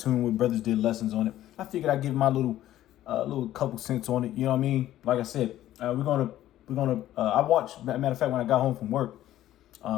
with. Brothers did lessons on it. I figured I'd give my little couple cents on it. You know what I mean? Like I said, we're gonna. I watched. Matter of fact, when I got home from work,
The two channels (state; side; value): quieter; right; 13.4 dB